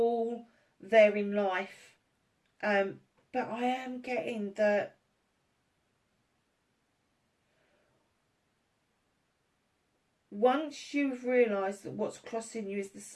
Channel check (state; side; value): identical; both; correlation 1.00